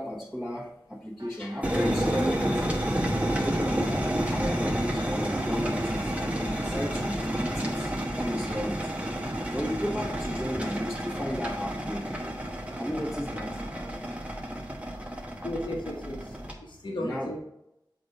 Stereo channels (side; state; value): both; normal; correlation 0.90